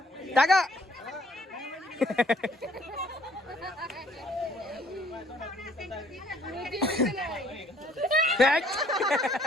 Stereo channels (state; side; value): normal; both; correlation 0.61